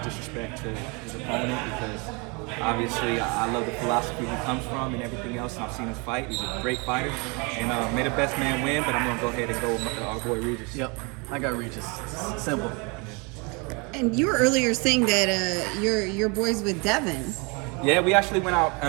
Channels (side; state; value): left; quieter; 30.8 dB